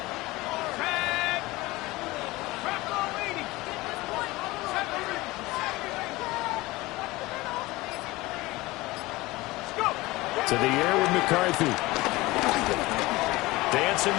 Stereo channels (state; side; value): quieter; right; 20.4 dB